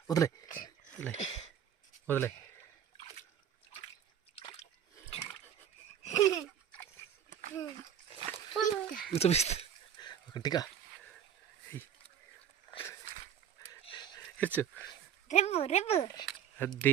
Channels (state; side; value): quieter; left; 8.9 dB